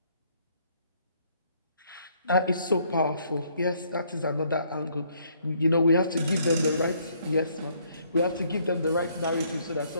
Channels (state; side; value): inverted; both; correlation -0.67